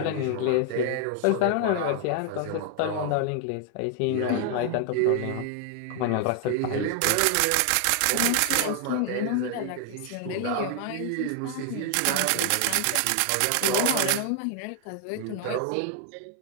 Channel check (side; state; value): both; different; correlation 0.00